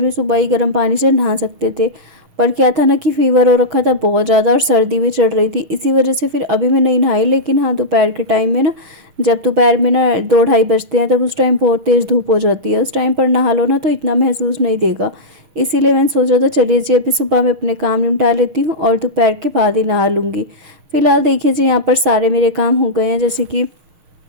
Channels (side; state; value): left; late; 6.5 ms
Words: सुबह ही गर्म पानी से नहा सकते थे। पर क्या था ना कि फ़ीवर हो रखा था बहुत ज़्यादा और सर्दी भी चढ़ रही थी, इसी वजह से फिर अभी मैं नहीं नहाई। लेकिन हाँ, दोपहर के टाइम में ना, जब दोपहर में ना 2-2:30 बजते हैं, तब उस टाइम बहुत तेज़ धूप हो जाती है। उस टाइम पर नहा लो ना तो इतना महसूस नहीं देगा। इसीलिए मैंने सोचा था चलिए जी अभी सुबह में अपने काम निपटा लेती हूँ और दोपहर के बाद ही नहा लूँगी। फ़िलहाल देखिए जी, यहाँ पर सारे मेरे काम हो गए हैं। जैसे कि